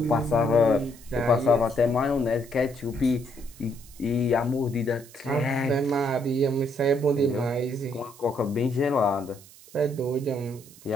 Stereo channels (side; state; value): right; noise; hiss, 22 dB below the sound